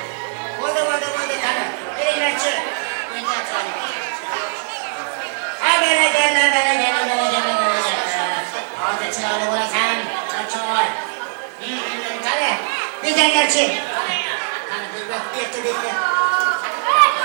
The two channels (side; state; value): left; silent; digital silence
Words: Güzellerçi. Hani bir bak getir bitti.